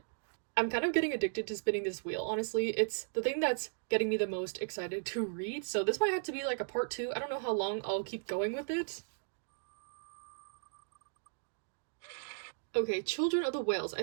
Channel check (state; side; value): silent; left; digital silence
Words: I'm kind of getting addicted to spinning this wheel, honestly. It's the thing that's getting me the most excited to read, so this might have to be like a part 2. I don't know how long I'll keep going with it. Okay, Children of the Whales. I